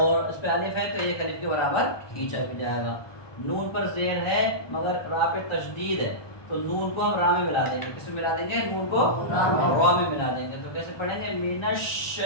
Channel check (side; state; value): right; late; 1.2 ms